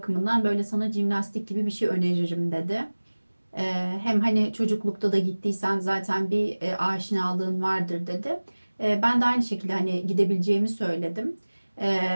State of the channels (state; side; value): inverted; both; correlation -1.00